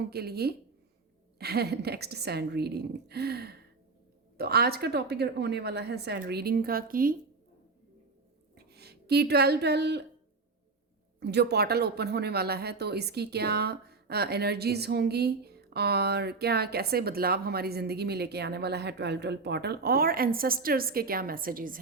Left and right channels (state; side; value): quieter; left; 4.0 dB